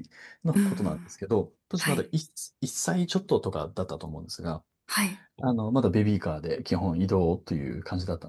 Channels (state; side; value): identical; both; correlation 1.00